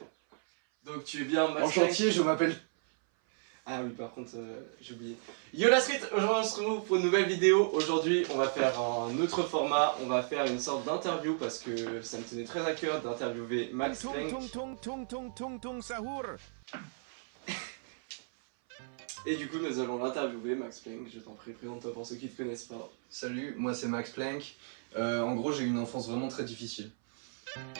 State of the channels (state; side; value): silent; left; 55 dB below the other